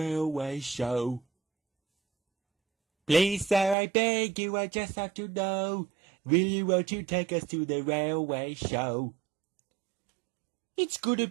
show? Please, sir, I beg you, I just have to know. Won't you take us to the railway show? It's gonna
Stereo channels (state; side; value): drops out; left; at 3.8 s